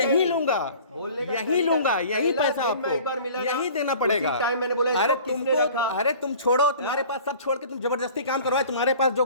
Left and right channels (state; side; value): inverted; both; correlation -0.46